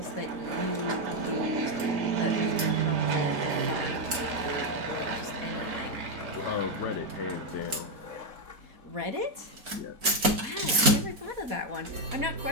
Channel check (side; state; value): left; late; 4.4 ms